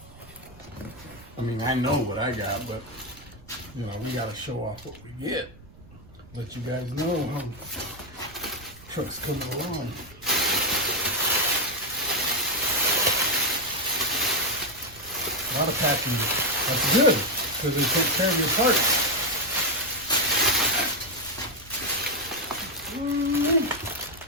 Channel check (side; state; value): right; noise; rumble, 22 dB below the sound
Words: I mean, I know what I got, but you know, we gotta show off what we get. Let you guys know how trucks coming along. A lot of packing. That's good, because they take care of your parts.